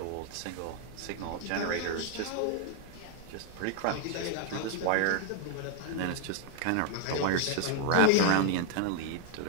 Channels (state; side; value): different; both; correlation 0.00